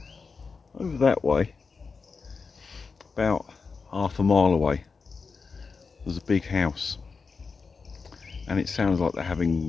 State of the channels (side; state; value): right; quieter; 4.9 dB